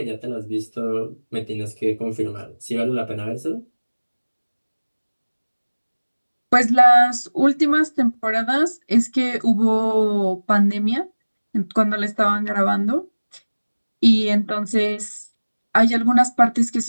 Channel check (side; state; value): both; inverted; correlation -1.00